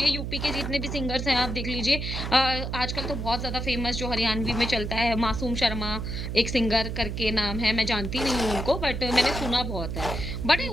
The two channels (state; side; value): noise; right; hum, 4 dB below the sound